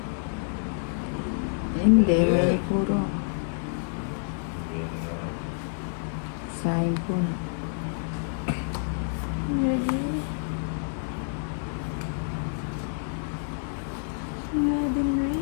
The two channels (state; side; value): silent; right; digital silence